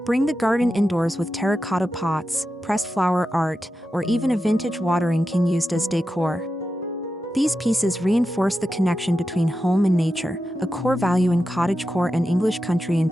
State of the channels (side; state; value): both; normal; correlation 0.90